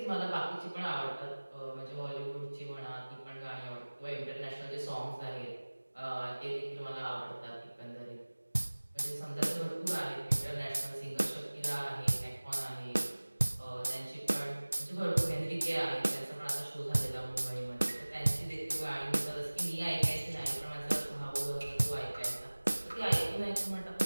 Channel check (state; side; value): inverted; both; correlation -1.00